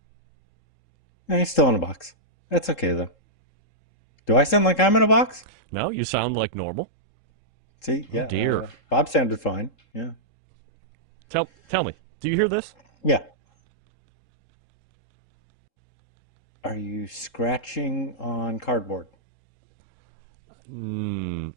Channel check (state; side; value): late; right; 3.7 ms